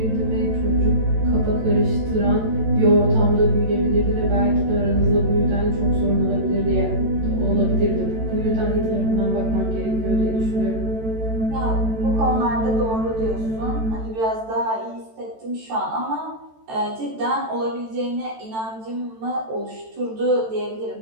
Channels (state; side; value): late; left; 13 ms